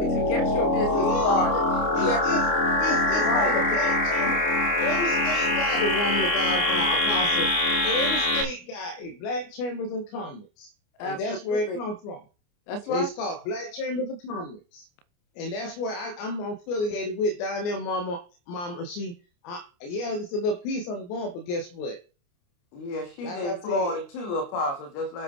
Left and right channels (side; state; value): right; late; 29 ms